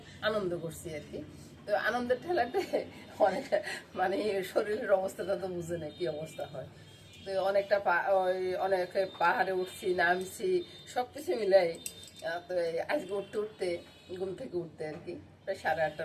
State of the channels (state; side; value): identical; both; correlation 1.00